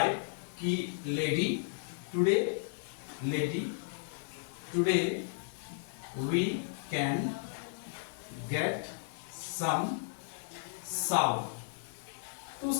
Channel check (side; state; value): right; silent; digital silence